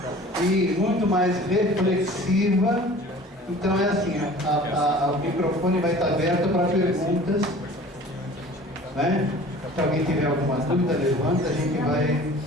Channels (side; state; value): both; normal; correlation 0.45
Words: e muito mais reflexiva. Então é assim, o microfone vai estar aberto para perguntas, né? Se alguém tiver alguma dúvida, levanta, a gente vai